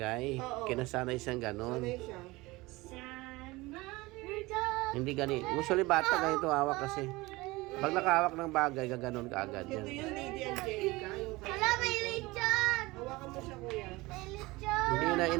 Oo. Kinasanay siyang ganon. Sanay siya. sad mother duck. Hindi ganito. Usually bata ganito hawak kasi. Pag nakahawak ng bagay, gaganon ka agad Ito yan. yung Lady Angelica. Yung Hala, may lechon! hawakan mo siya, kuya. May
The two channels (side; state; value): left; quieter; 21.5 dB